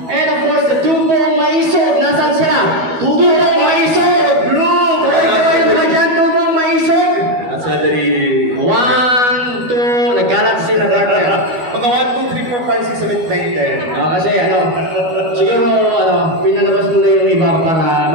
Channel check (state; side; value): late; left; 12 ms